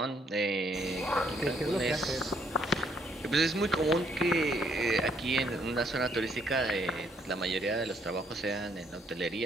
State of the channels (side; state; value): both; normal; correlation 0.69